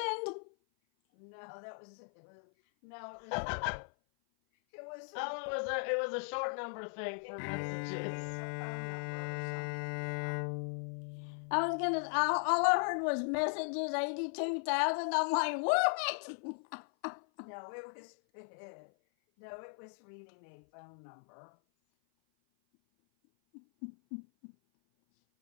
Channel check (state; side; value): silent; right; 53 dB below the other